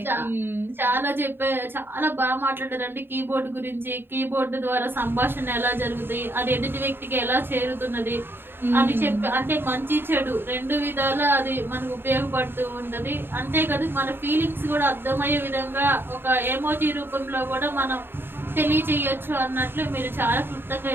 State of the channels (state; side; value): late; left; 0.10 ms